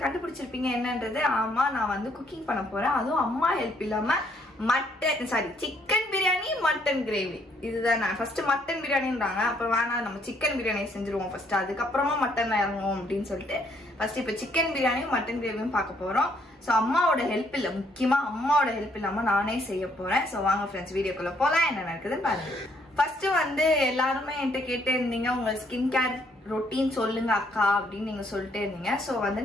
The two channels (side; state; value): both; normal; correlation 0.69